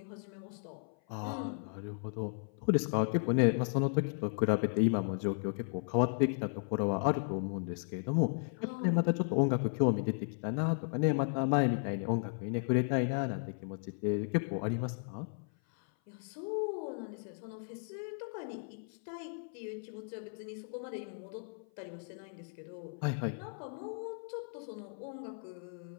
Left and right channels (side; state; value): right; silent; 54 dB below the other